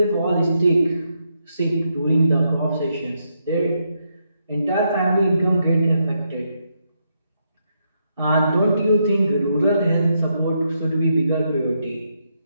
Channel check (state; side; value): inverted; both; correlation -0.80